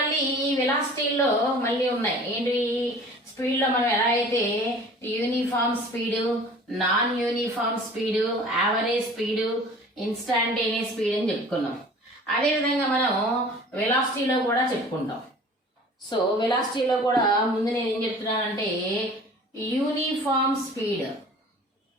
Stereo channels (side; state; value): both; normal; correlation 0.45